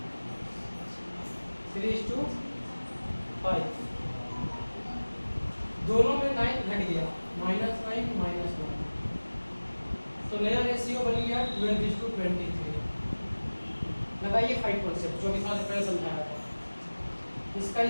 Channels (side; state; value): both; inverted; correlation -1.00